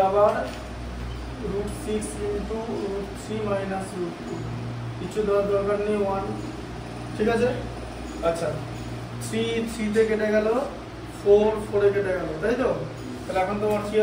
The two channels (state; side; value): identical; both; correlation 1.00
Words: আবার √6 ইনটু √3 মাইনাস √2 কিছু দেওয়ার দরকার নেই 1 ঠিক আছে আচ্ছা 3 3 তে কেটে গেল 4 4 এ কেটে গেল তাই তো তাহলে এখন তোমার কি